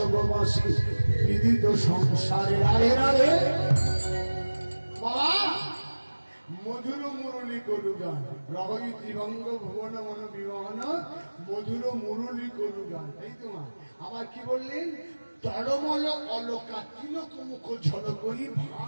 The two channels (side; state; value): both; inverted; correlation -1.00